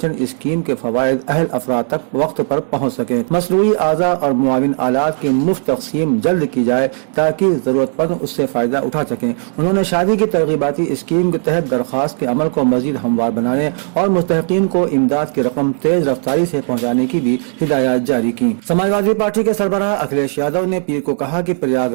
स्कीम के फवायद अहल अफराद तक वक्त पर पहुँच सके। मसनूई आज़ा और मुआविन आलात की मुफ्त तकसीम जल्द की जाए ताकि जरूरतमंद उससे फायदा उठा सकें। उन्होंने शादी की तरगीबाती स्कीम के तहत दरख्वास्त के अमल को मजीद हमवार बनाने और मुस्तहिकीन को इमदाद की रकम तेज रफ्तारी से पहुँचाने की भी हिदायत जारी की। समाजवादी पार्टी के सरबराह अखिलेश यादव ने पीर को कहा कि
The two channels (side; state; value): left; silent; 57 dB below the other